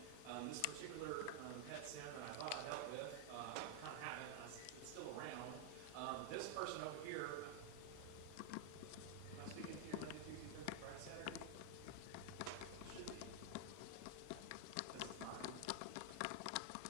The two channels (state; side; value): different; both; correlation 0.00